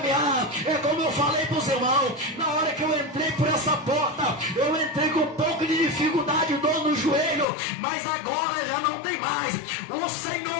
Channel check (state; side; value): drops out; right; at 7.5 s